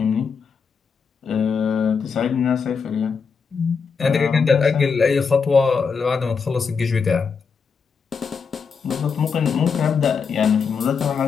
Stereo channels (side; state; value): right; quieter; 5.7 dB